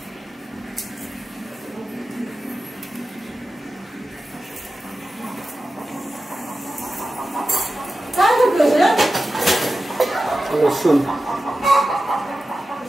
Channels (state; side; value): normal; both; correlation 0.93